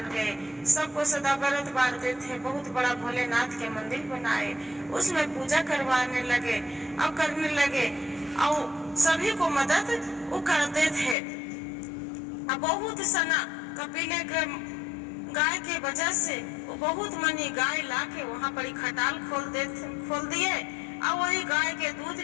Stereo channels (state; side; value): drops out; right; at 11.2 s